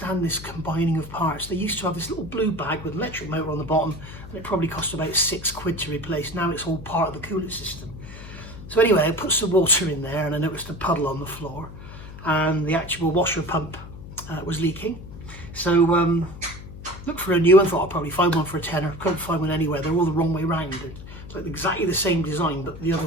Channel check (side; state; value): left; noise; hum, 14 dB below the sound